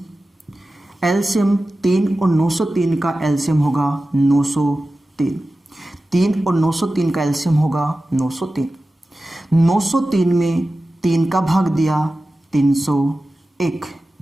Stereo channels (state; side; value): normal; both; correlation 0.95